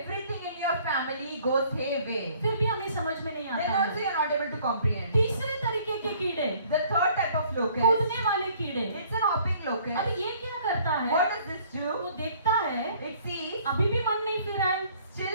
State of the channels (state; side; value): inverted; both; correlation -0.58